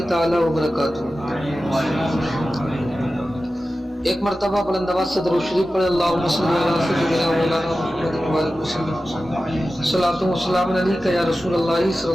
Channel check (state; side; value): normal; both; correlation 0.94